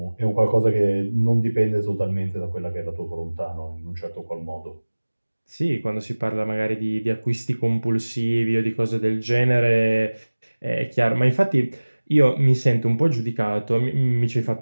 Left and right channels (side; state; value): both; inverted; correlation -1.00